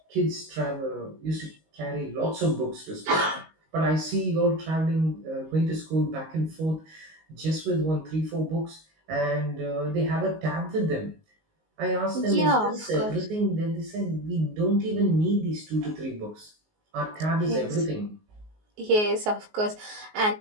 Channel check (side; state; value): left; late; 19 ms